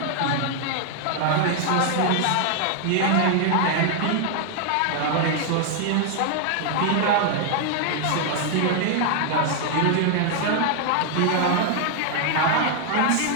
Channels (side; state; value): both; different; correlation 0.00